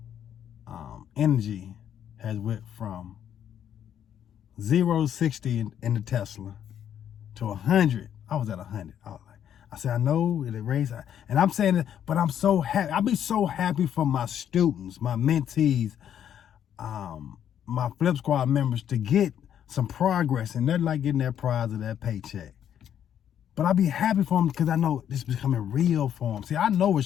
energy has went from 0 to 60 in the Tesla to 100. I was at 100. I said, I know it raised, and I'm saying it, but I'm so happy. I'll be so happy for my students, my mentees, my Flip Squad members to get some progress, and they're like getting that prize of that paycheck. But I'll be happy for them because I know this is becoming real for them. See, I know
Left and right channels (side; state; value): right; quieter; 9.6 dB